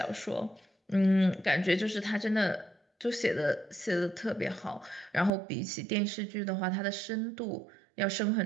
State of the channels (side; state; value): left; drops out; at 5.3 s